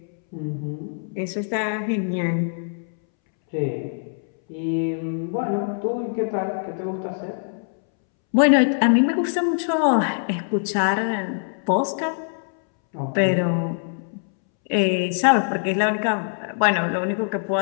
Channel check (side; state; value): right; silent; 63 dB below the other